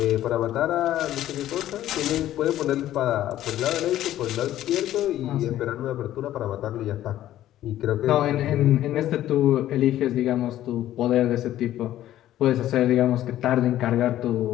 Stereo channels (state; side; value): quieter; right; 13.1 dB